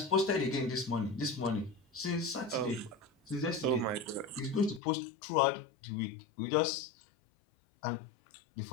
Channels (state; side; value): drops out; right; at 4.8 s